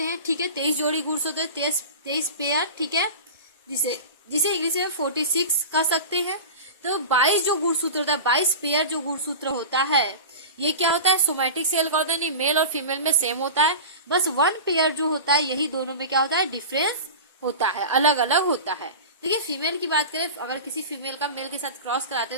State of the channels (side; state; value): both; inverted; correlation -0.31